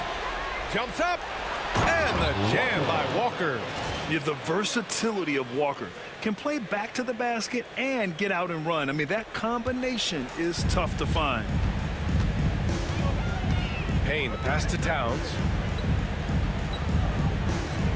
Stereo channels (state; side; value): identical; both; correlation 1.00